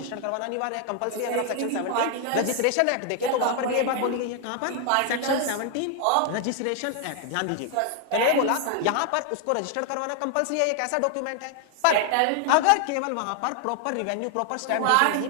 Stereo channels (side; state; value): both; different; correlation 0.00